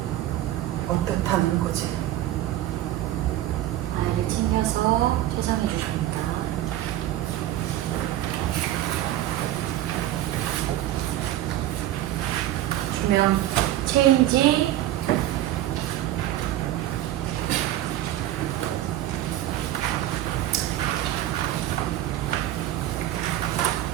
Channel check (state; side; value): quieter; left; 13.7 dB